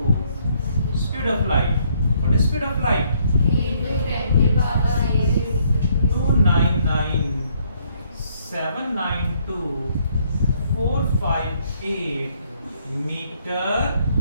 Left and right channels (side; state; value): both; inverted; correlation -0.68